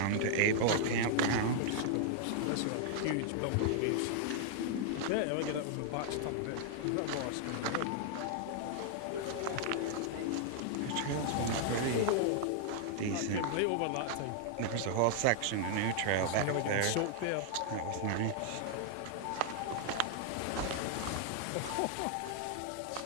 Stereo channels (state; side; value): different; both; correlation -0.01